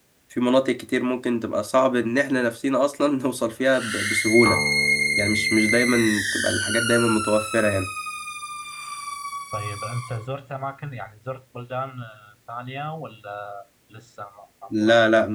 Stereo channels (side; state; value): both; identical; correlation 1.00